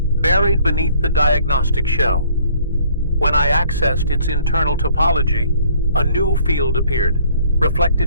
buried beneath the diagnostic shell. When I accessed its internal topology, a new field appeared,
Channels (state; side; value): inverted; both; correlation -0.59